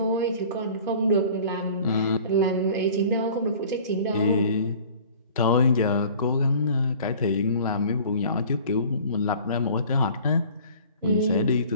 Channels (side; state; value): both; inverted; correlation -0.47